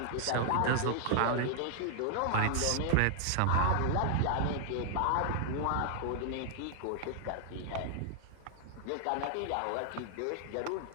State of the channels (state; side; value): different; both; correlation -0.01